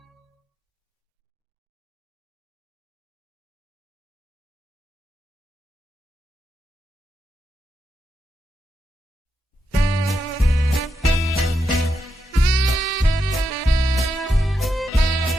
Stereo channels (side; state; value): both; normal; correlation 0.84